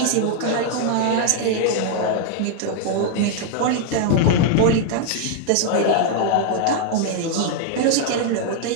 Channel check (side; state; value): both; different; correlation 0.00